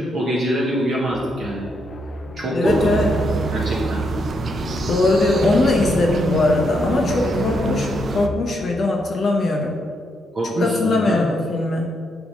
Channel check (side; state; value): both; normal; correlation 0.78